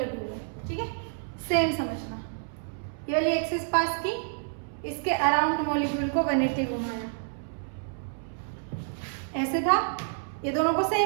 हुए हैं, ठीक है, सेम समझना। ये वाली एक्सिस पास की, इसके अराउंड मॉलिक्यूल को 180 घुमाया, ऐसे था, ये दोनों को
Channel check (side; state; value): left; silent; 59 dB below the other